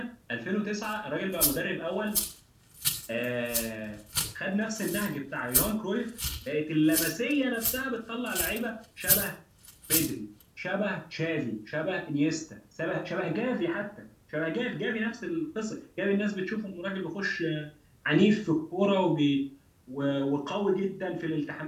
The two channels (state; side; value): identical; both; correlation 1.00